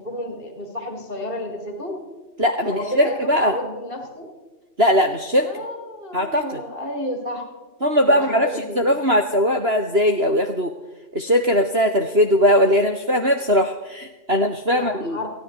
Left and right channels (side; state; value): left; late; 3.0 ms